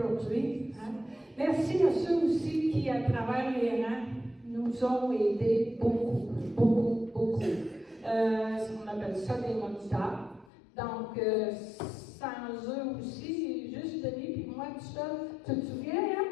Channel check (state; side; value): drops out; right; at 10.5 s